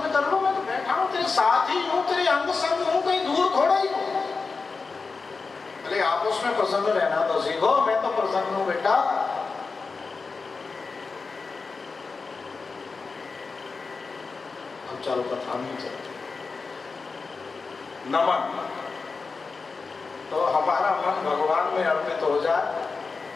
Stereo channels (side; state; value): right; quieter; 4.5 dB